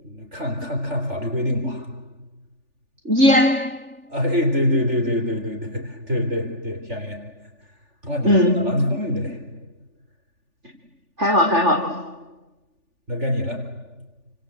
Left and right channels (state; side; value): late; left; 3.4 ms